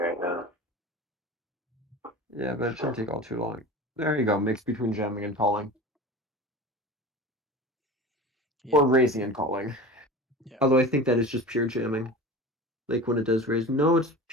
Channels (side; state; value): both; normal; correlation 0.33